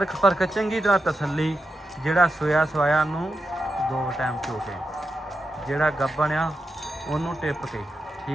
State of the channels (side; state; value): both; normal; correlation 0.89